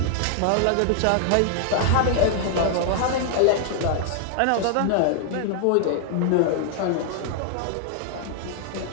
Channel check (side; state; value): both; different; correlation 0.00